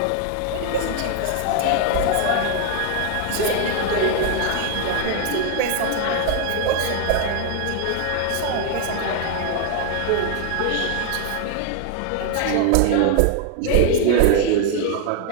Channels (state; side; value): different; both; correlation 0.00